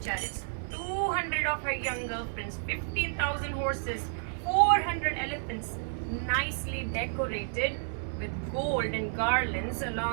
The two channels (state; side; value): silent; left; digital silence